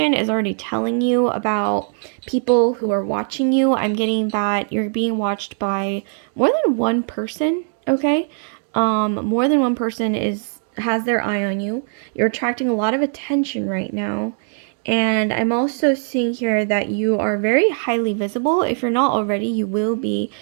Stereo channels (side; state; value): left; silent; 59 dB below the other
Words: is already telling you about people who are watching you. I'm getting that you're being watched by more than one person, okay? More than one person has their eye on you. You're attracting a lot of attention right now. And I'm also seeing here that you are very highly visible. If you're not already, you will be